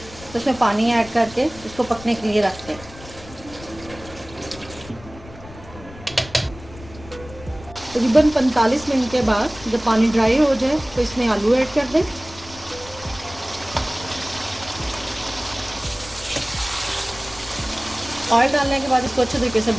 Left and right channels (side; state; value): left; noise; rumble, 18 dB below the sound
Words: तो इसमें पानी ऐड करके इसको पकने के लिए रख दें। तकरीबन 45 मिनट के बाद जब पानी ड्राई हो जाए तो इसमें आलू ऐड कर दें। ऑयल डालने के बाद इसको अच्छे तरीके से